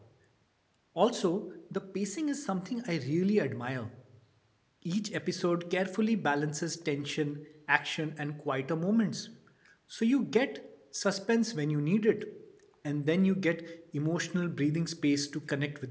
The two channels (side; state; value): both; identical; correlation 1.00